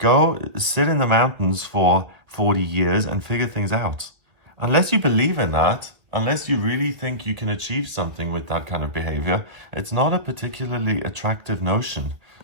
sit in the mountains for 40 years and figure things out. Unless you believe in that, unless you really think you can achieve something with that kind of behavior, it's not a particularly attractive notion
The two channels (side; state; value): left; late; 2.1 ms